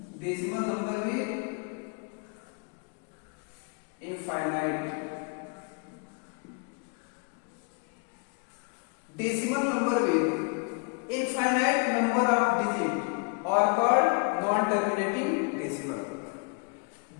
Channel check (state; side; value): quieter; right; 35.6 dB